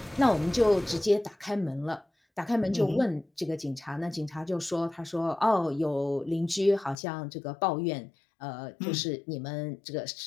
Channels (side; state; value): right; drops out; at 7.0 s